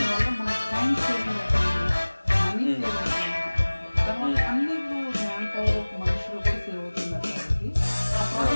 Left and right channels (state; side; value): inverted; both; correlation -1.00